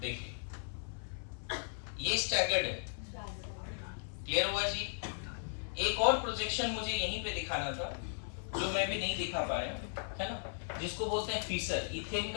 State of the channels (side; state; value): right; silent; 53 dB below the other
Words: ये स्टैगर्ड है, क्लियर हुआ जी। एक और प्रोजेक्शन मुझे यहीं पे दिखाना था जो मैं भी नहीं दिखा पाया, है ना, जिसको बोलते हैं फीसर। इथेन